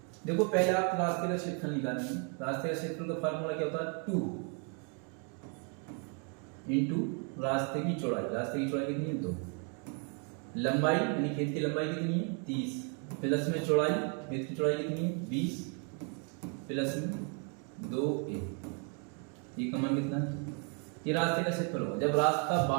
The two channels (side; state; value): left; quieter; 39.2 dB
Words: देखो पहले आप रास्ते का क्षेत्रफल निकालेंगे। रास्ते का क्षेत्रफल का फार्मूला क्या होता है? 2 इंटू रास्ते की चौड़ाई। रास्ते की चौड़ाई कितनी है? 2। लंबाई यानी खेत की लंबाई कितनी है? 30 प्लस में चौड़ाई, खेत की चौड़ाई कितनी है? 20 प्लस में 2a। ये का मान कितना है? ये रास्ते का क्षेत्रफल होगा। जब रास्ता